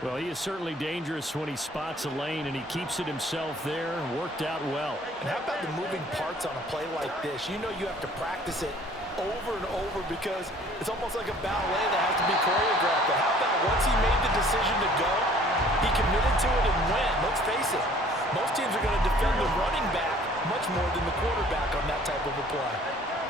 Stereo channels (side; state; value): both; normal; correlation 0.54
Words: Well, he is certainly dangerous when he spots a lane, and he keeps it himself there. Worked out well. And how about the moving parts on a play like this? You know you have to practice it over and over because it's almost like a ballet that has to be choreographed. But how about once he made the decision to go, he committed to it and went. Let's face it, most teams are going to defend the running back much more than the quarterback on that type of a play.